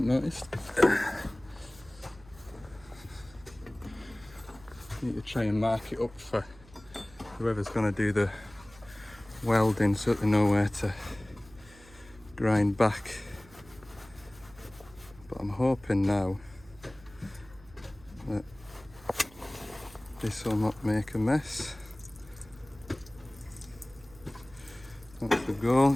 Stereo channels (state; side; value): noise; right; hum, 23 dB below the sound